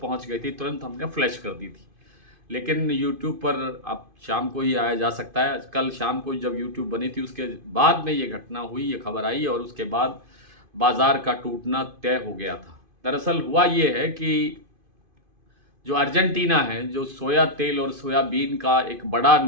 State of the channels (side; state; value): left; late; 2.5 ms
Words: पहुंच गई थी, तुरंत हमने फ्लैश कर दी थी। लेकिन यूट्यूब पर अब शाम को ही आया जा सकता है। कल शाम को जब यूट्यूब बनी थी उसके बाद में ये घटना हुई, ये खबर आई और उसके बाद बाजार का टूटना तय हो गया था। दरअसल हुआ ये है कि जो अर्जेंटीना है, जो सोया तेल और सोयाबीन का एक बड़ा